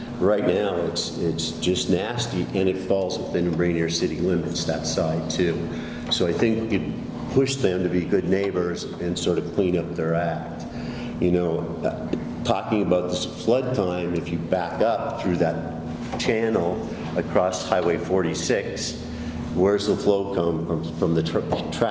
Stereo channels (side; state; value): both; identical; correlation 1.00